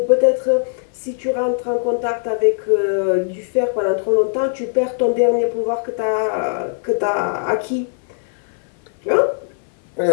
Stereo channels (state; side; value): silent; right; 58 dB below the other